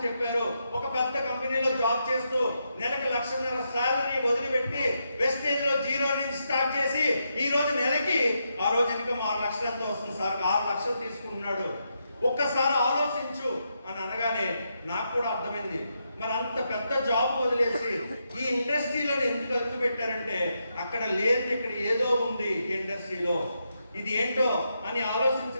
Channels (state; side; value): inverted; both; correlation -0.83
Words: చెప్పారు. ఒక పెద్ద కంపెనీలో జాబ్ చేస్తూ నెలకు 1,00,000 సాలరీ వదిలిపెట్టి వెస్టేజ్ లో 0 నుంచి స్టార్ట్ చేసి ఈ రోజు నెలకి ఆ రోజు ఇన్కమ్ 6 లక్షలతో వస్తుంది. సార్ 6 లక్షలు తీసుకుంటున్నాడు. ఒక్కసారి ఆలోచించు అని అనగానే నాకు కూడా అర్థమైంది, మరి అంత పెద్ద జాబ్ వదిలేసి ఈ ఇండస్ట్రీలో ఎందుకు అడుగు పెట్టారంటే అక్కడ లేదు, ఇక్కడ ఏదో ఉంది ఈ ఇండస్ట్రీలో, ఇది ఏంటో అని